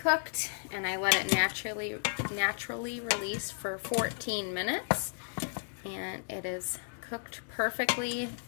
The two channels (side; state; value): right; silent; digital silence